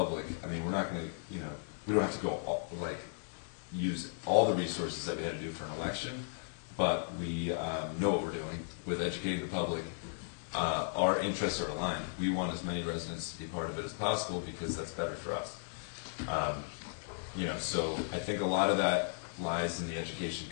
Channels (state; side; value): silent; right; digital silence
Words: I mean, we're not going to, you know, we don't have to go use all the resources that we had to do for an election, but we know what we're doing with educating the public. Our interests are aligned. We want as many residents to be part of it as possible because that's better for us. You know, so I think a lot of that lies in the education